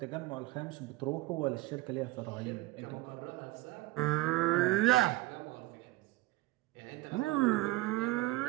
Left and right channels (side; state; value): left; quieter; 19.1 dB